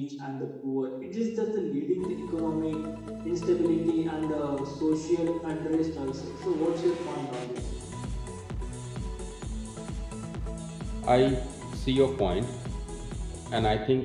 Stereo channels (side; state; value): both; identical; correlation 1.00